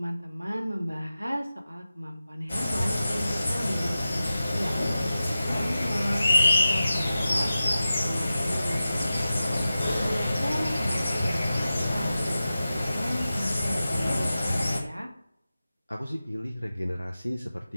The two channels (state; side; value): inverted; both; correlation -0.94